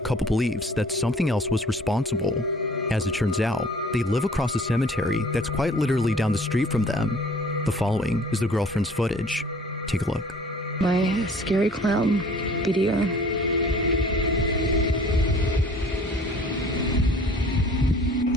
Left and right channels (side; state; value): both; normal; correlation 0.51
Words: believes that something else was responsible. As it turns out, they live across a cemetery that's quite literally down the street from them. The following is the girlfriend's footage. Take a look. My scary clown video.